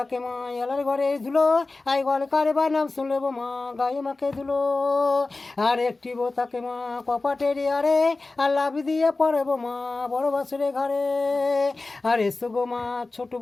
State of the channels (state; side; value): quieter; right; 3.4 dB